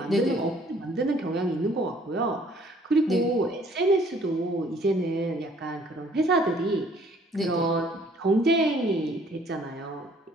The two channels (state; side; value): normal; both; correlation 0.59